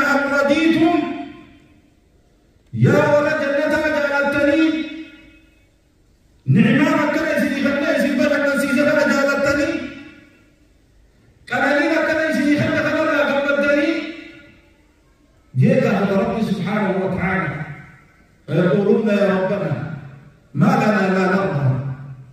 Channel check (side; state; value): both; identical; correlation 1.00